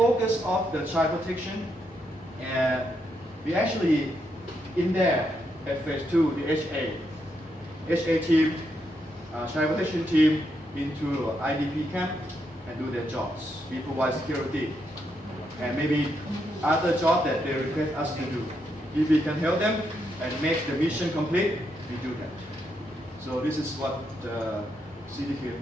of the child protection, we actually in there at phase 2, the HA team, child protection team into IDP camp and do their jobs. We provide security and maybe other job that they request us to do. If we can help them and make the mission complete, we do that. So this is what CDK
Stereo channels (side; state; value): both; normal; correlation 0.80